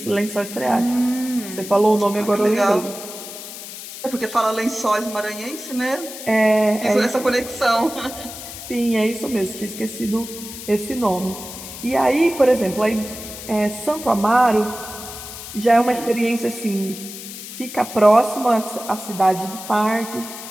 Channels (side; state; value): left; noise; hiss, 11 dB below the sound